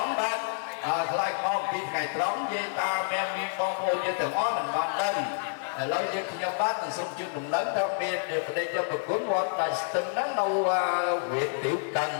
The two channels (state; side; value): silent; right; digital silence